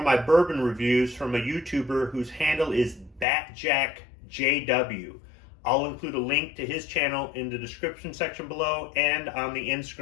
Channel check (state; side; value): drops out; right; at 3.2 s